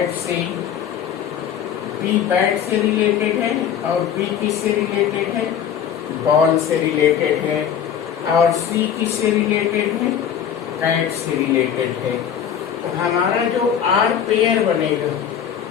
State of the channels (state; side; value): quieter; right; 8.8 dB